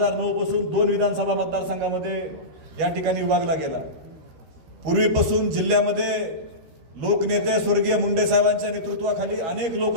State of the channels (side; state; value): left; late; 12 ms